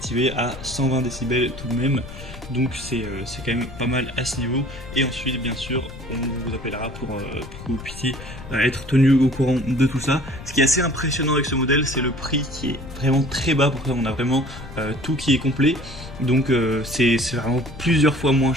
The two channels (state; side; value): noise; left; rumble, 14 dB below the sound